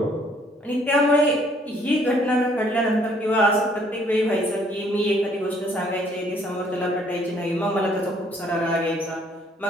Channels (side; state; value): both; normal; correlation 0.63